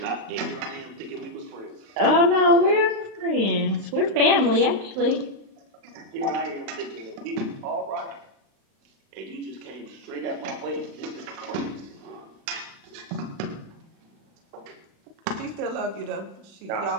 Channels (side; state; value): left; late; 35 ms